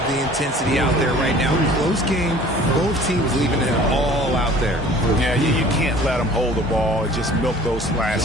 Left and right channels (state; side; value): normal; both; correlation 0.48